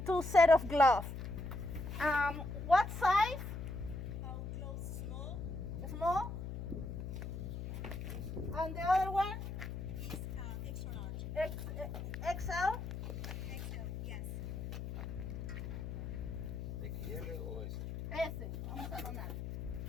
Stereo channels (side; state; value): left; noise; hum, 6 dB below the sound